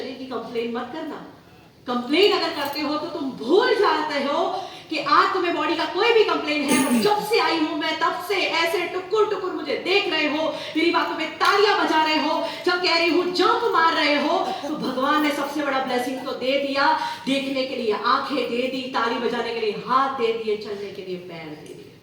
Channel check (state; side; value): identical; both; correlation 1.00